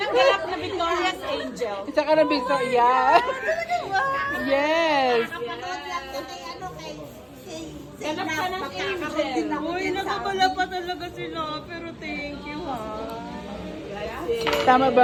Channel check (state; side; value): identical; both; correlation 1.00